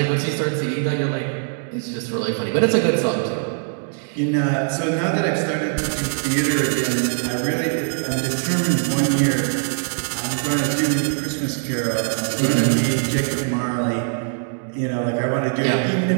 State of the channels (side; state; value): left; silent; digital silence